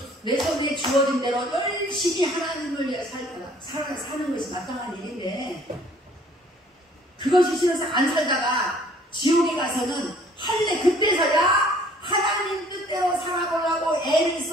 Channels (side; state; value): both; normal; correlation 0.56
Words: 내 손에 주어진 대로 열심히 하나님을 위해 사는 것이 마땅한 일인데 그것이 싫어서 안 살다가 지옥에 가서는 할래 그때서야 하나님 뜻대로 살아보려고 애를